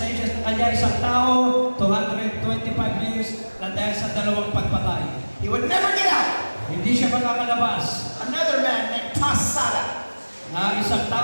sa kanya isang tao, 225 years na dahil sa dalawang pagpatay. He would never get out. Hindi siya makakalabas. Another man named Tassada, Na isang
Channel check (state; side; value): inverted; both; correlation -1.00